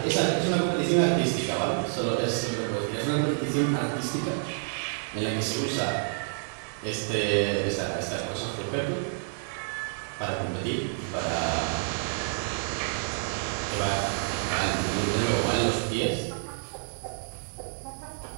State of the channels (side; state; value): left; silent; 58 dB below the other